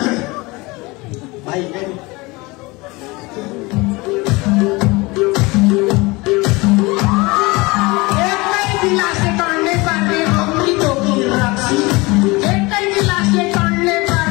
भाइ एकै गिलासले टन्ने पार्ने अमृतो की रक्सी एकै गिलासले टन्ने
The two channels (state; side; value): quieter; right; 23.9 dB